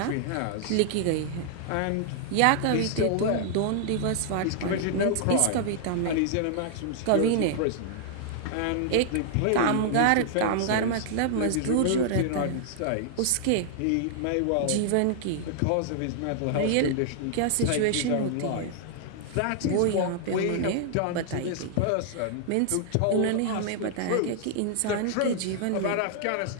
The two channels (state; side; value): different; both; correlation -0.01